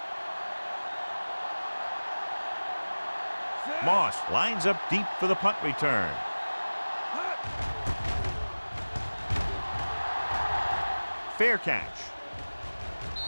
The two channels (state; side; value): inverted; both; correlation -1.00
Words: Moss lines up deep for the punt return. Fair catch.